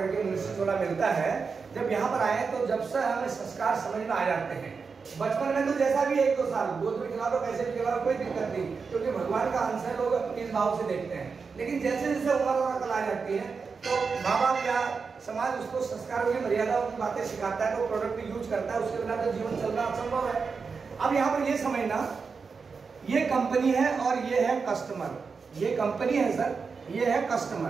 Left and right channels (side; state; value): left; quieter; 5.1 dB